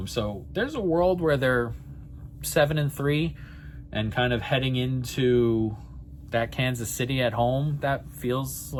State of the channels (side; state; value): both; identical; correlation 1.00